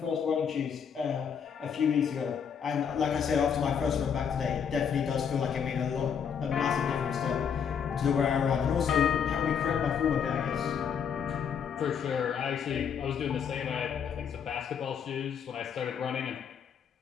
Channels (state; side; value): quieter; right; 7.3 dB